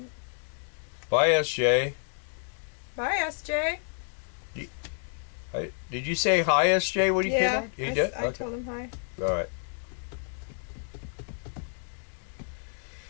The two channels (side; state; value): right; silent; 58 dB below the other